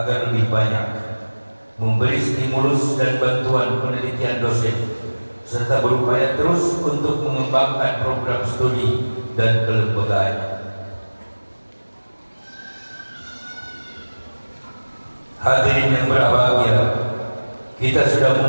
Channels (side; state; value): both; inverted; correlation -1.00